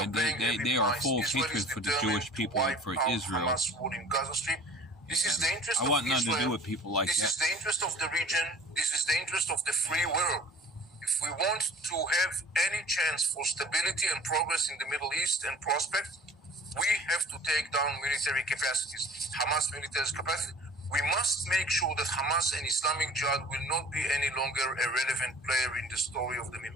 And paying heavy they are price. full of Israel is hatred for the determined Jewish to people and wipe for out Israel. Hamas rule in Gaza Strip. This is the interest I of want nothing to do Israel. with people like This that. is the interest of the region. This is the interest of the free world. If we want to have any chance for stability and progress in the Middle East and prospect, we have to take down military capacities, Hamas military capacity. We must make sure that Hamas and Islamic Jihad will not be any longer a relevant player in the story of the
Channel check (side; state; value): both; normal; correlation 0.45